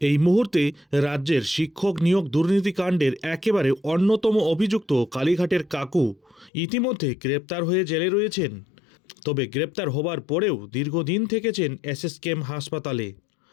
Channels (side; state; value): right; drops out; at 6.5 s